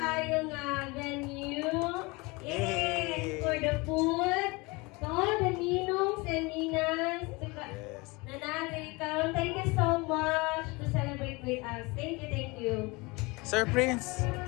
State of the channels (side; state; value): right; quieter; 25.4 dB